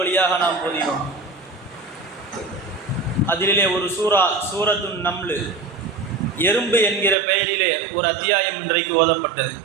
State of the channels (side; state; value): left; drops out; at 7.2 s